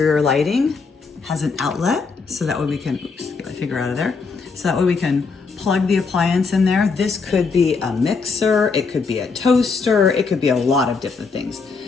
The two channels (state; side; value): quieter; right; 4.8 dB